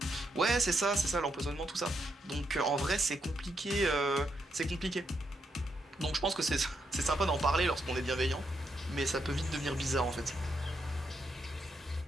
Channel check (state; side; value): normal; both; correlation 0.80